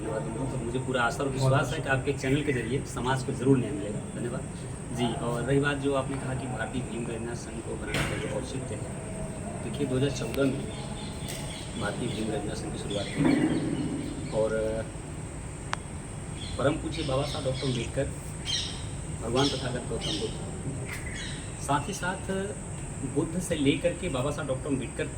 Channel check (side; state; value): both; identical; correlation 1.00